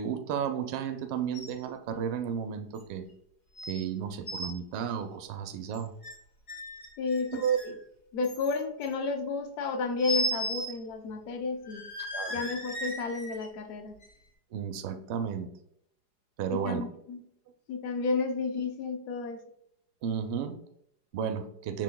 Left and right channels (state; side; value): late; right; 4.8 ms